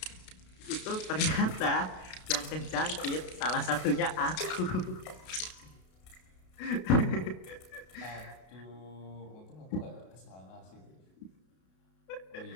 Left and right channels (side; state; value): right; late; 32 ms